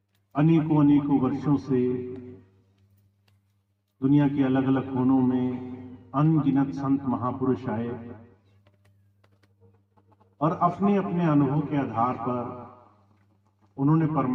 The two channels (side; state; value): both; identical; correlation 1.00